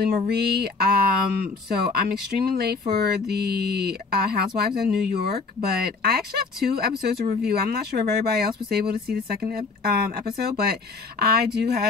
Marie. So I'm extremely late for the Housewives of New York, but I actually have 2 episodes to review. I'm not sure if everybody else was able to see the second episode, but I do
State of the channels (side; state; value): right; quieter; 4.3 dB